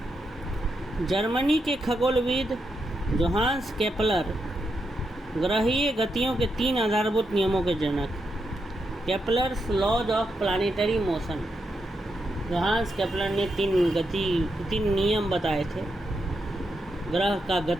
जर्मनी के खगोलविद जोहान्स केपलर ग्रहीय गतियों के 3 आधारभूत नियमों के जनक, Kepler's laws of planetary motion. Johannes Kepler ने 3 नियम बताए थे ग्रह का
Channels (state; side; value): normal; both; correlation 0.83